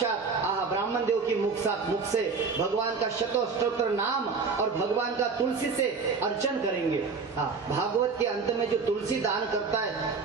ब्राह्मण देव की मुख से भगवान का शतोस्तोत्र नाम और भगवान का तुलसी से अर्चन करेंगे। भागवत के अंत में जो तुलसी दान करता है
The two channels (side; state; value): left; quieter; 4.9 dB